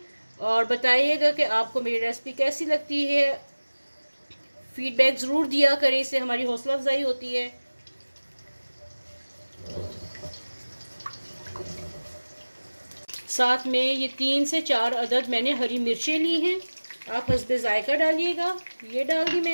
और बताइएगा कि आपको मेरी रेसिपी कैसी लगती है। फीडबैक ज़रूर दिया करें, इससे हमारी हौसला अफजाई होती है। साथ में ये 3 से 4 अदद मैंने हरी मिर्चें ली हैं, आप हस्बे जायका डालिएगा। ये डाल दी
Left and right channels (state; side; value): inverted; both; correlation -1.00